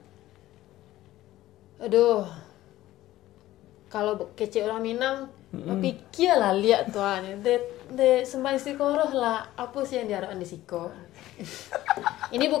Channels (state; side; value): quieter; right; 15.2 dB